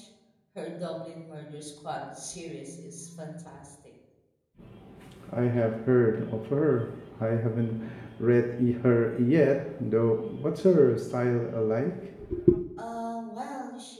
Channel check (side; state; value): both; identical; correlation 1.00